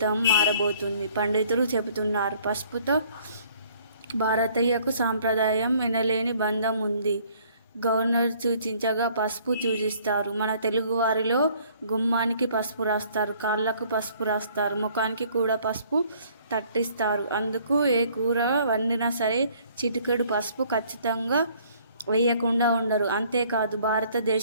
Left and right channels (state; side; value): inverted; both; correlation -0.59